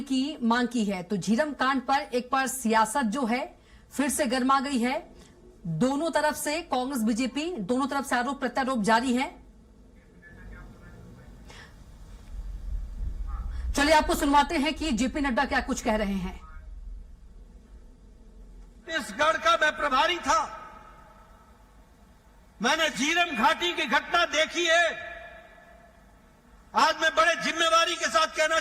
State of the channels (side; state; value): both; identical; correlation 1.00